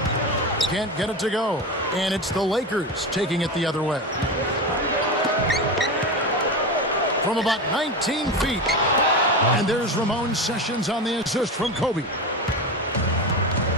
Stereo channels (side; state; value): both; normal; correlation 0.21